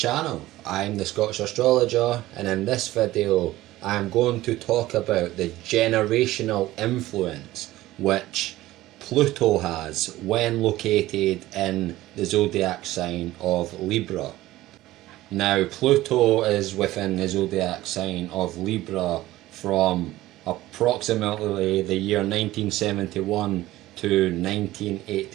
I'm the Scottish Astrologer, and in this video I am going to talk about the generational influence which Pluto has when located in the zodiac sign of Libra. Now, Pluto is within the zodiac sign of Libra from approximately the year 1971 to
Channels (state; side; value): quieter; left; 16.4 dB